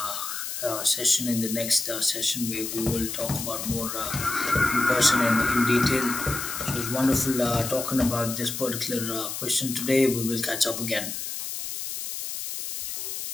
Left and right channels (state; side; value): noise; left; hiss, 6 dB below the sound